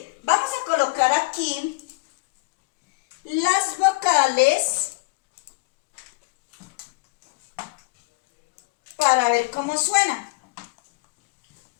Vamos a colocar aquí las vocales para ver cómo suena.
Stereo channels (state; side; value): quieter; right; 25.6 dB